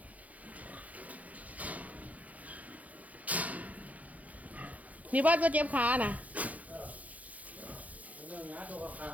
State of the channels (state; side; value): late; left; 0.073 ms